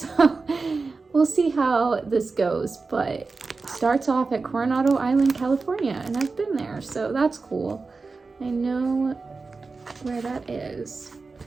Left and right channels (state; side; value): quieter; left; 4.1 dB